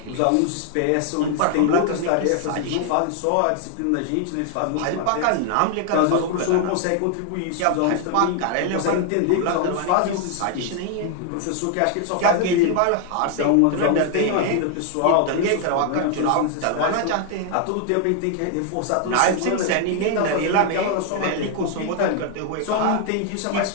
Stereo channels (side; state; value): both; different; correlation 0.00